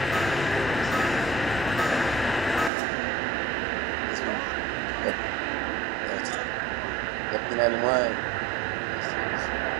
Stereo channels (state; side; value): drops out; left; at 2.7 s